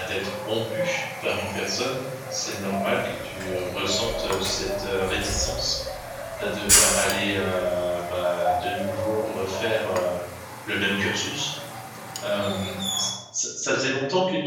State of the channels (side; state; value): both; identical; correlation 1.00